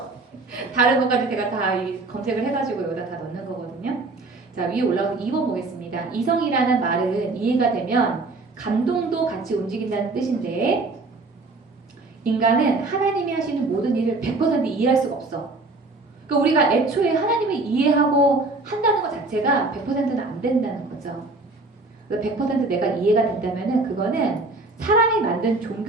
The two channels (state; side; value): quieter; left; 3.3 dB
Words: 다른 것까지 제가 다 검색을 해가지고 여기다 다 넣는 거거든요. 자, 위에 올라온 2번 보겠습니다. 이성이라는 말은 이해가 되면 감동도 같이 움직인다는 뜻인데 인간은 하나님이 하시는 모든 일을 100% 이해할 수가 없어. 그러니까 우리가 애초에 하나님을 이해하고 한다는 것 자체가 100%는 안 된다는 거죠. 100% 내가 이해가 된다면은 그거는 사람이 만든